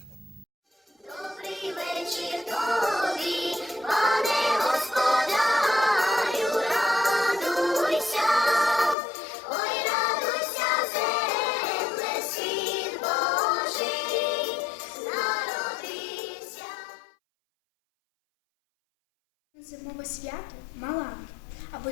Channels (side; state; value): right; drops out; at 9.0 s